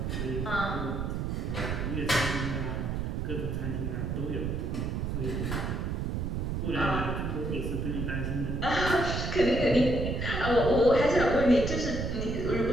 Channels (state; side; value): noise; right; rumble, 2 dB below the sound